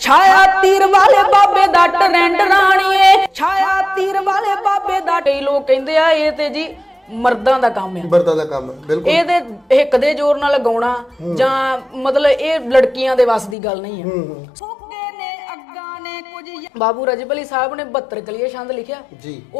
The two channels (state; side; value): drops out; right; at 13.6 s